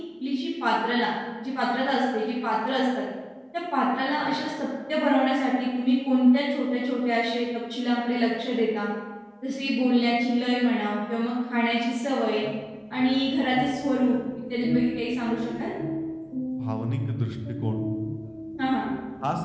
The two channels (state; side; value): identical; both; correlation 1.00